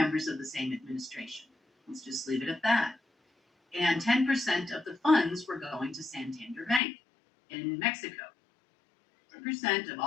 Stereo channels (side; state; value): right; drops out; at 6.8 s